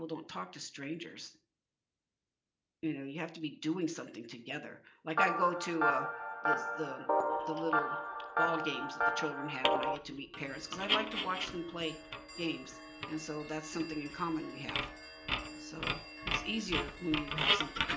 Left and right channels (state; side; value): identical; both; correlation 1.00